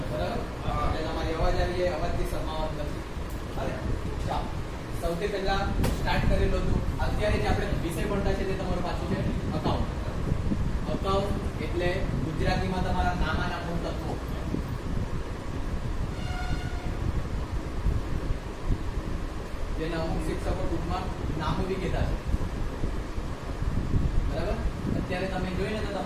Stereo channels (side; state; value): both; identical; correlation 1.00